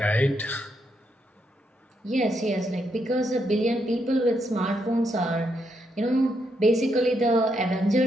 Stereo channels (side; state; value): both; normal; correlation 0.79